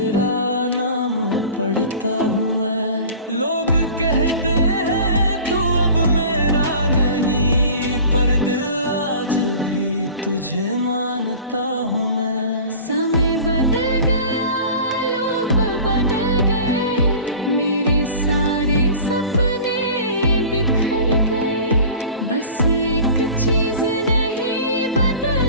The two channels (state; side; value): inverted; both; correlation -0.40